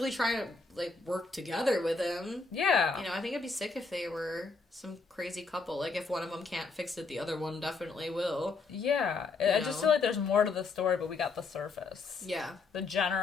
trying to like work together with him. Yeah. You know, I think it'd be sick if they were some crazy couple. Like, if one of them can't fix it, the other one definitely will. Yeah. I just feel like there's more to the story, but we got the surface. Yeah. The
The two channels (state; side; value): quieter; right; 4.2 dB